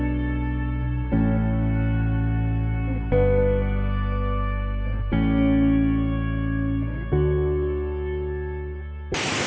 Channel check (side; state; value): both; identical; correlation 1.00